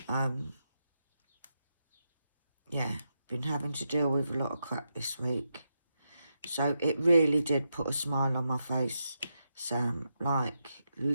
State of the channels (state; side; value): inverted; both; correlation -0.85